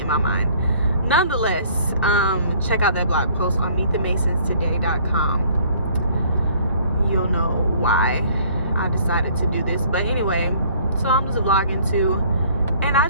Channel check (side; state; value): both; inverted; correlation -0.56